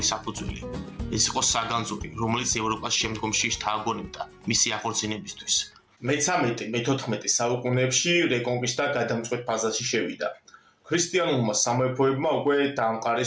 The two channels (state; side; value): identical; both; correlation 1.00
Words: საფუძველი. ეს იყო საგანძური, რომელიც ევროპას შემდგომში შთააგონებდა მისი აღორძინებისთვის. მე-13-მე-14 საუკუნეებში რეკონკისტა გადამწყვეტ ფაზაში შევიდა. ქრისტიანულმა სამეფოებმა უკვე